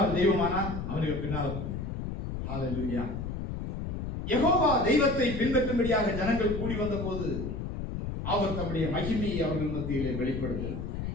தெய்வமானால் அவனுக்கு பின்னால். ஹல்லேலூயா. யெகோவா தெய்வத்தை பின்பற்றும்படியாக ஜனங்கள் கூடி வந்த போது அவர் தம்முடைய மகிமையை அவர்கள் மத்தியிலே வெளிப்படுத்தினார்.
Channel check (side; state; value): left; noise; rumble, 5 dB below the sound